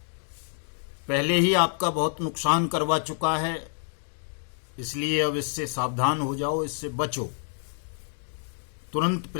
पहले ही आपका बहुत नुकसान करवा चुका है, इसलिए अब इससे सावधान हो जाओ, इससे बचो। तुरंत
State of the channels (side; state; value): right; silent; digital silence